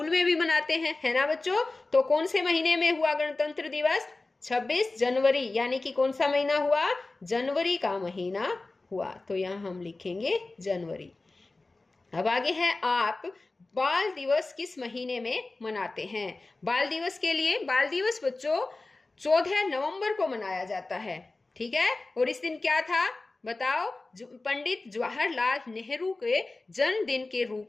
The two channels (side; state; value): right; quieter; 3.3 dB